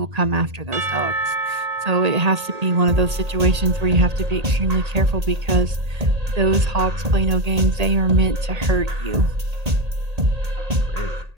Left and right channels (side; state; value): left; late; 1.8 ms